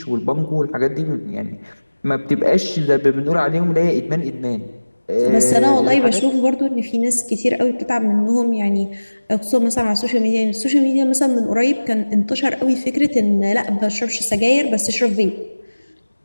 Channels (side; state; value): both; inverted; correlation -1.00